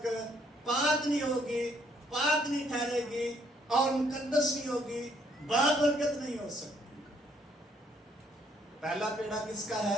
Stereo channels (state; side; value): normal; both; correlation 0.68